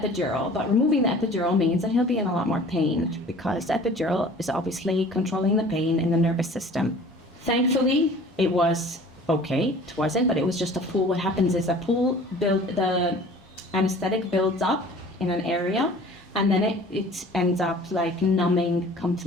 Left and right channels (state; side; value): normal; both; correlation 0.47